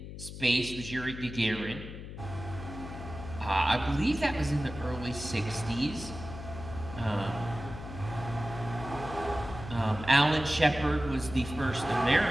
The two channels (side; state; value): left; noise; hum, 10 dB below the sound